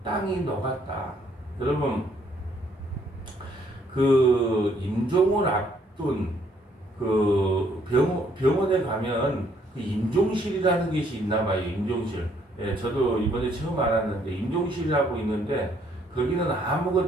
땅이 녹았다. 여러분, 그 임종을 앞둔 그 병원에 가면 그 임종실이라는 것이 있나 봐요. 임종실. 예, 저도 이번에 처음 알았는데 임종실이라고 있는데 거기는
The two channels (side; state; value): both; normal; correlation 0.67